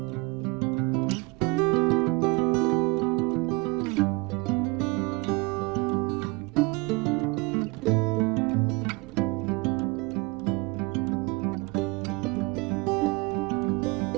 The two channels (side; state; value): left; quieter; 26.9 dB